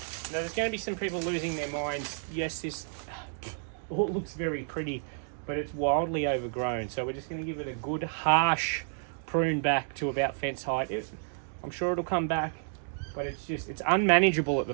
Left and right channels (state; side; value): silent; left; digital silence